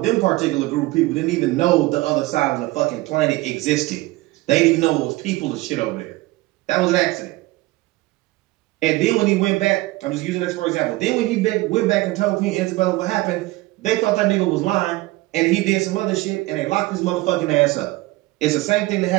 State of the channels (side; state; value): left; quieter; 19.9 dB